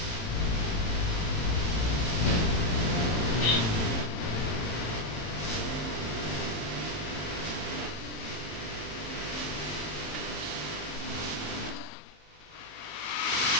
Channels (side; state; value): right; late; 18 ms